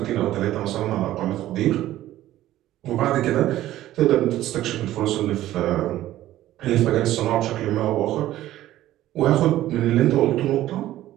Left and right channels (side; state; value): left; quieter; 14.2 dB